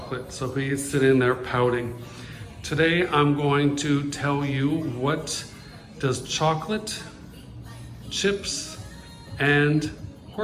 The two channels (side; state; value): both; identical; correlation 1.00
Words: so he's sitting there pouting. Today I'm going to tell you what does chocolate, chips, and